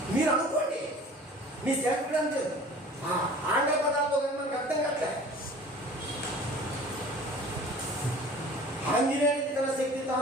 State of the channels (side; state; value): both; normal; correlation 0.44